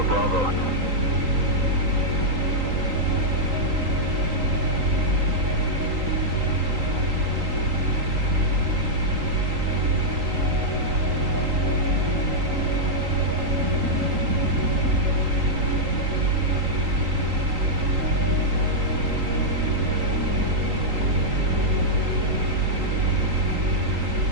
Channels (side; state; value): left; late; 3.9 ms